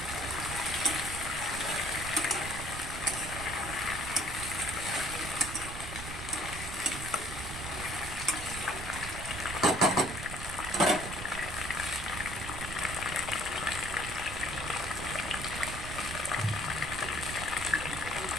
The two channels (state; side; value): noise; right; rumble, 8 dB below the sound